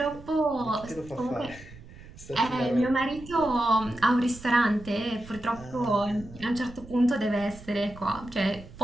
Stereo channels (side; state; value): right; noise; rumble, 18 dB below the sound